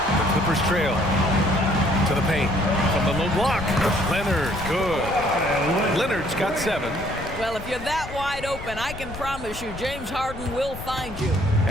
Clippers trail to the paint from the low block. Leonard, good. Leonard's got 7. Well, if you're that wide open, I can promise you James Harden will find you.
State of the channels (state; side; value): noise; left; rumble, 12 dB below the sound